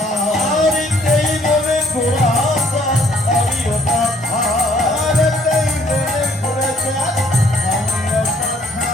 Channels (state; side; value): normal; both; correlation 0.62